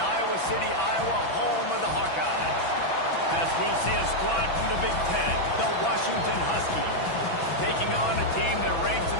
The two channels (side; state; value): right; late; 6.0 ms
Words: Iowa City, Iowa, home of the Hawkeyes. As we'll see a squad from the Big Ten, the Washington Huskies, taking on a team that ranks